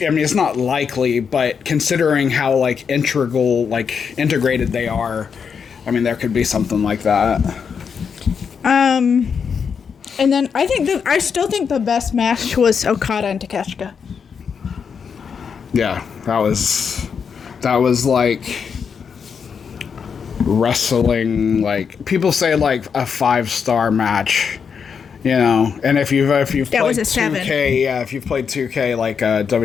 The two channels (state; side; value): quieter; right; 6.5 dB